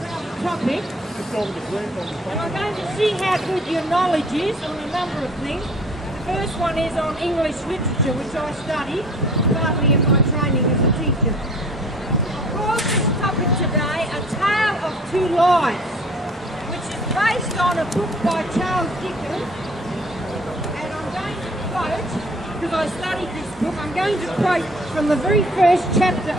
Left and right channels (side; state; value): both; normal; correlation 0.51